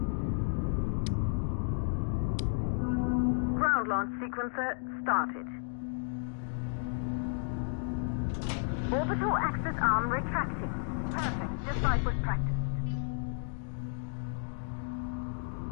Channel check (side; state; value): right; silent; 55 dB below the other